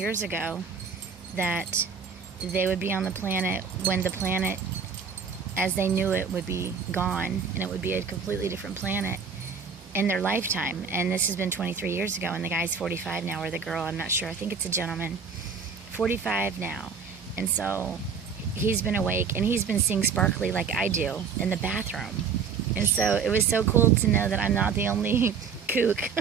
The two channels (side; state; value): left; quieter; 5.9 dB